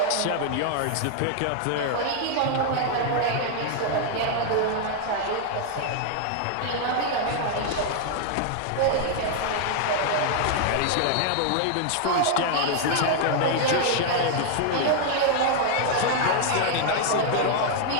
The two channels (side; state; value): both; different; correlation 0.00